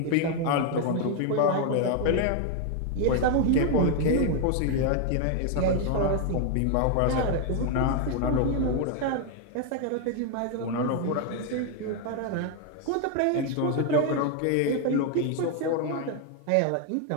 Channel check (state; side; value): different; both; correlation 0.01